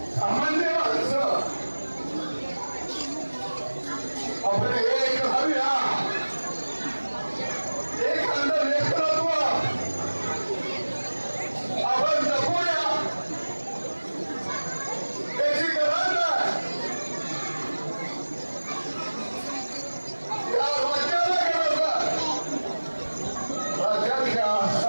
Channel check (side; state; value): both; inverted; correlation -1.00